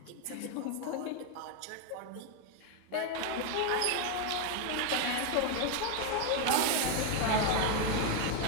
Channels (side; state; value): both; different; correlation 0.01